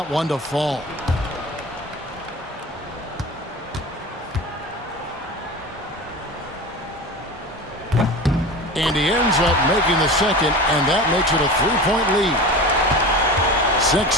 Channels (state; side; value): normal; both; correlation 0.32